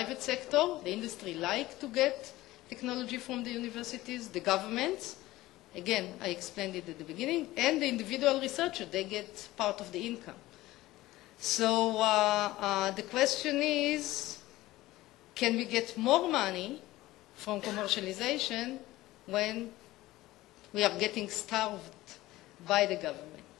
sector. The industry like to get technology from the universities, the governments, again, I explained it at the beginning, and the individual researcher, they get part of the income. So the question is, can we get more money from commercialization when we are getting starved by the government?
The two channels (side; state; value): right; quieter; 17.4 dB